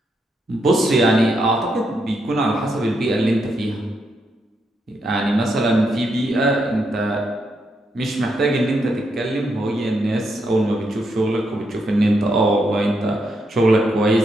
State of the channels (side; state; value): both; normal; correlation 0.80